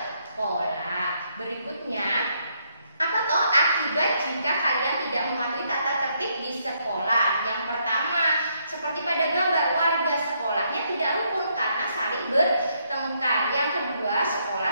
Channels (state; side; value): inverted; both; correlation -0.74